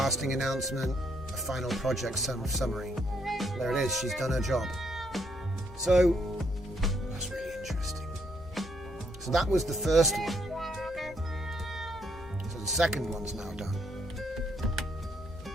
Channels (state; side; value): normal; both; correlation 0.73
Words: announcement, a final project summary. There it is, she's done her job. So, that's really interesting. So that was the first one. So the second one's now done.